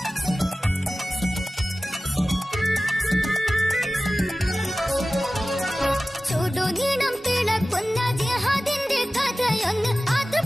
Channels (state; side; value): normal; both; correlation 0.96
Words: ചുടുനീണം തിളക്കുന്ന ജിഹാദിന്റെ കഥയൊന്ന്